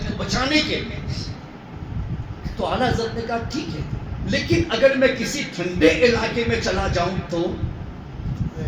کو بچانے کے لیے۔ تو اعلیٰ حضرت نے کہا ٹھیک ہے، لیکن اگر میں کسی ٹھنڈے علاقے میں چلا جاؤں تو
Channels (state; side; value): identical; both; correlation 1.00